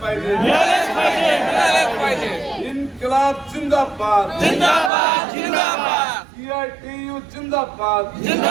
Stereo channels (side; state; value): left; drops out; at 4.9 s